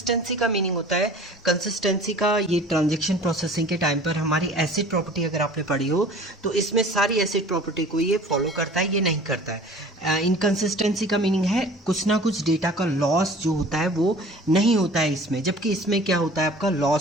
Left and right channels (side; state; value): both; normal; correlation 0.46